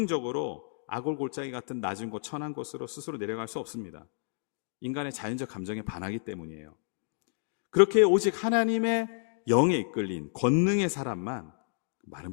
아골 골짜기 같은 낮은 곳, 천한 곳으로 스스로 내려갈 수 없습니다. 인간의 자연적 감정에 반하기 때문이에요. 그렇게 오직 하나님의 영에 이끌린 권능의 사람만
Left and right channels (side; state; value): right; silent; digital silence